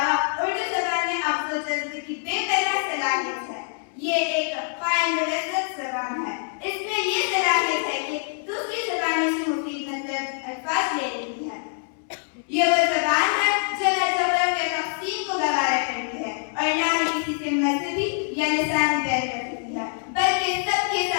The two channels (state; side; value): silent; right; 62 dB below the other